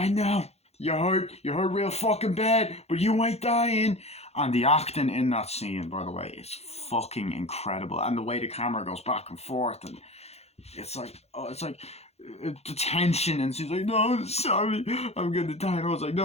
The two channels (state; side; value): late; right; 0.31 ms